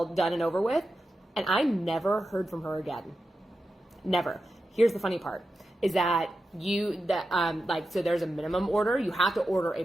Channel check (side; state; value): both; normal; correlation 0.91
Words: done and over with. And I never heard from her again. Never. Here's the funny part is that so there's a minimum order. You have to order a